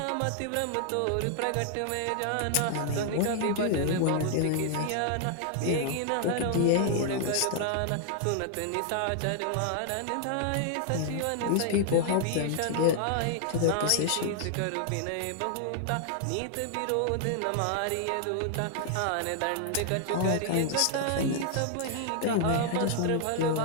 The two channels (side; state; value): both; different; correlation 0.00